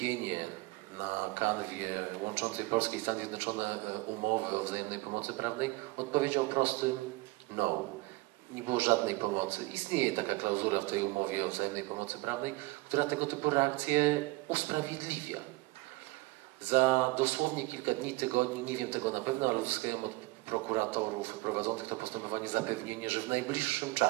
na kanwie łączącej Polskę i Stany Zjednoczone umowy o wzajemnej pomocy prawnej odpowiedział prostym no. Nie było żadnej pomocy. Istnieje taka klauzula w tej umowie o wzajemnej pomocy prawnej, która tego typu reakcje usprawiedliwia. Za dosłownie kilka dni, tygodni, nie wiem tego na pewno, ale uzyskałem od prokuratorów prowadzących to postępowanie zapewnienie, że w najbliższym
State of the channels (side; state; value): left; quieter; 21.9 dB